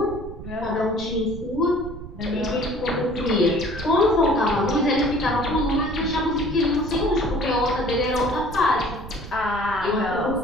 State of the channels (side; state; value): right; noise; rumble, 13 dB below the sound